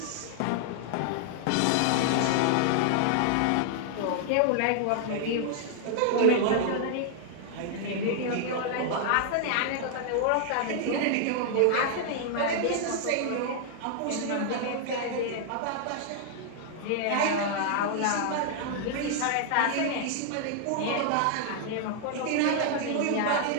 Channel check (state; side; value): different; both; correlation 0.00